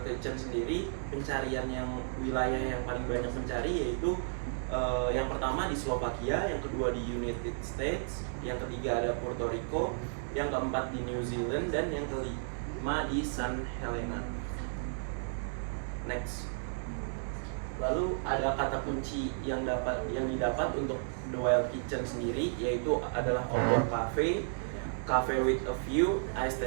Kitchen sendiri, pencarian yang wilayah yang paling banyak mencari yaitu yang pertama di Slovakia, yang kedua di United States, yang ketiga ada Puerto Rico, yang keempat di New Zealand, dan yang kelima di San Helena. Next. Lalu ada kata kunci yang didapat untuk The Wild Kitchen sendiri, yaitu adalah outdoor cafe, cafe with a view,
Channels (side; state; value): left; silent; digital silence